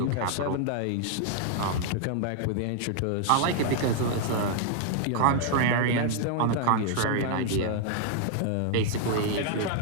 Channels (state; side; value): different; both; correlation -0.01